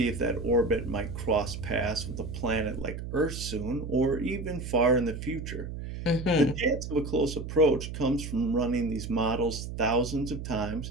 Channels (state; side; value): noise; right; hum, 7 dB below the sound